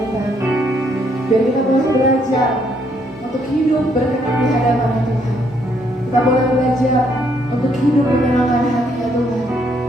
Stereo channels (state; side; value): normal; both; correlation 0.71